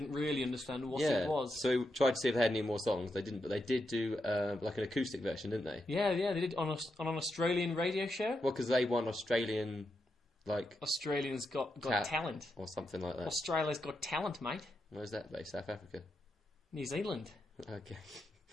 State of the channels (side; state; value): both; normal; correlation 0.85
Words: really understand what it was. So we tried to see if they had any more songs. They didn't, but they did do like an acoustic version, didn't they? Yeah, they did on an Australian radio show. Well, because they won Australians Got Talent or something like that. Australia's Got Talent, mate. Where's that based? South Africa. New Zealand. Okay.